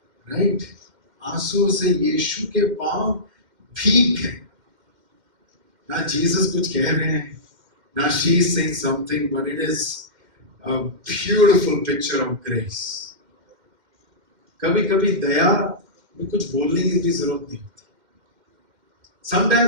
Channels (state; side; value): late; left; 2.1 ms